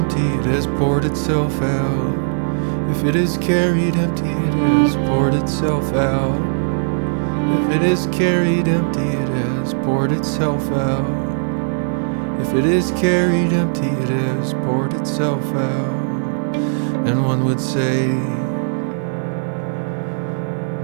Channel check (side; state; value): left; silent; digital silence